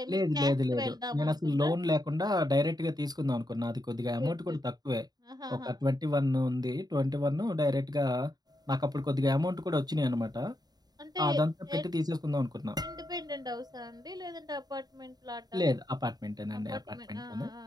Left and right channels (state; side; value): late; left; 0.19 ms